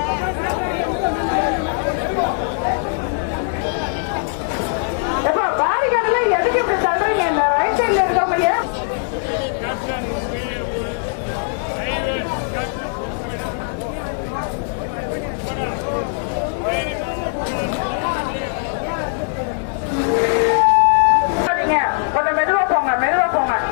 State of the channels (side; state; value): right; silent; 63 dB below the other